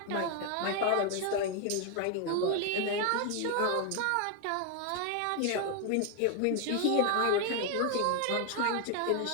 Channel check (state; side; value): different; both; correlation 0.01